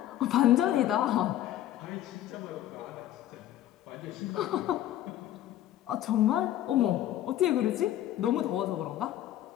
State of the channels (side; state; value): right; quieter; 12.8 dB